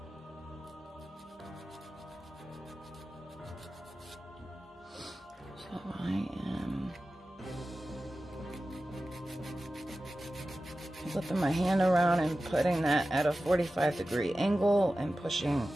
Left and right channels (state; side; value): normal; both; correlation 0.94